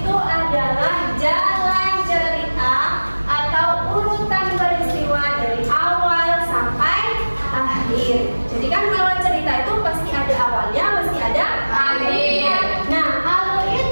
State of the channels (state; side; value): inverted; both; correlation -1.00